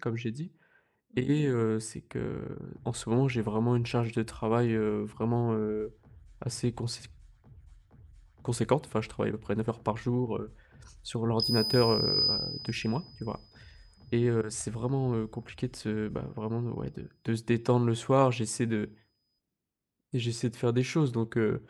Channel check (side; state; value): both; identical; correlation 1.00